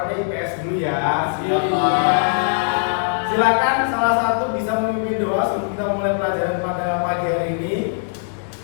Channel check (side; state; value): right; silent; digital silence